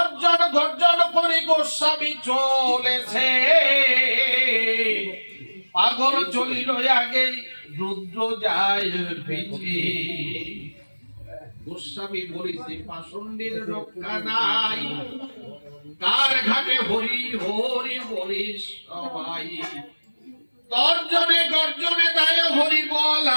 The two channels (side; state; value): both; inverted; correlation -1.00